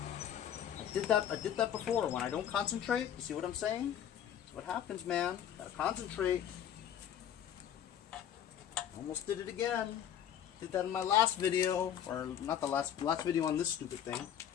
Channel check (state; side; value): quieter; right; 9.8 dB